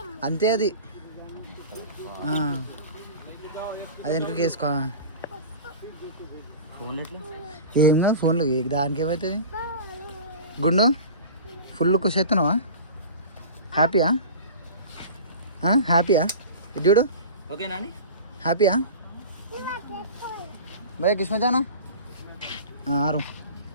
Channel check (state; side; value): inverted; both; correlation -0.35